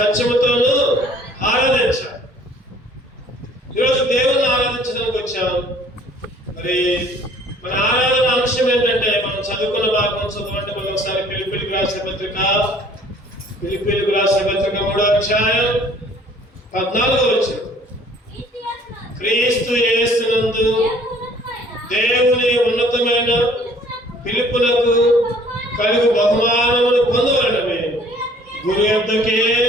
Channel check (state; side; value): normal; both; correlation 0.55